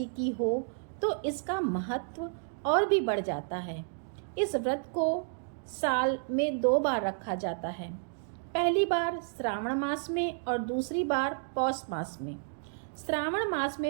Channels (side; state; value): left; silent; digital silence